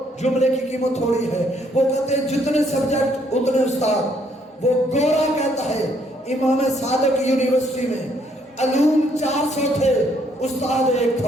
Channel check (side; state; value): both; normal; correlation 0.68